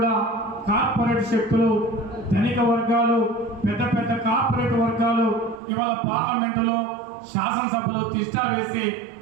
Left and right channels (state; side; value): drops out; left; at 5.6 s